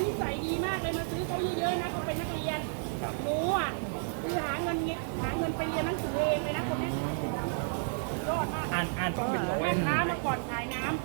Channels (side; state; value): left; silent; digital silence